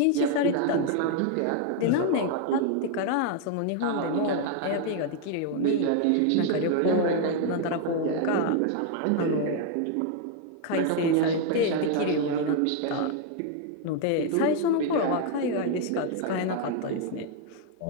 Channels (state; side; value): different; both; correlation 0.00